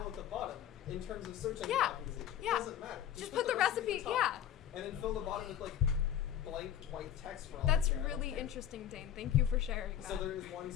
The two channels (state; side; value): quieter; right; 10.3 dB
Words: at the bottom in terms of search engine Yeah. optimization. Yeah. It doesn't matter. Just put the recipe. at the Yeah. top, and then fill the bottom with like blank white text for all That's you care. I don't really care. interesting, Dane. Thank you for sharing that. So there is one